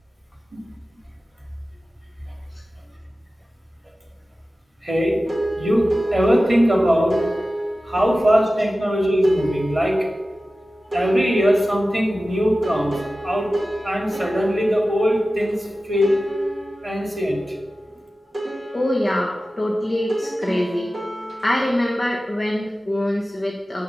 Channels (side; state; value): both; normal; correlation 0.95